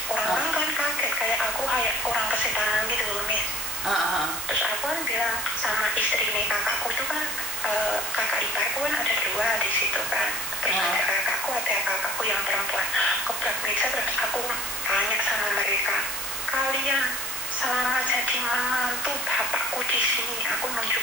orang-orang kan kaget kayak aku kayak orang kesetanan gitu loh Miss. Terus aku kan bilang sama istrinya kakakku itu kan, kakak iparku kan ada 2 di situ kan, terus ada kakakku yang perempuan gebrak meja. Terus aku tanya sama mereka, kalian selama jadi menantu bapakku di sini, aku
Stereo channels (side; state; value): right; noise; hiss, 5 dB below the sound